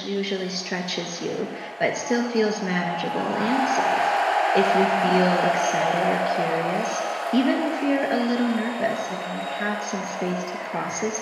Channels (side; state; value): both; identical; correlation 1.00